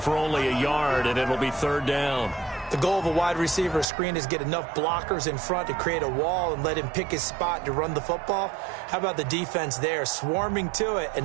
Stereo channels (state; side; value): drops out; left; at 3.9 s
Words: only a yard, and it'll be 3rd down. The goal of a wide receiver screen is get enough blockers in front to create a wall and let him pick his spot to run the football. How about the defense there, swarming to it and